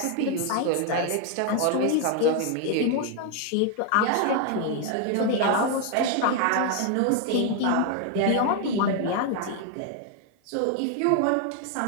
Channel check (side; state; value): both; different; correlation 0.00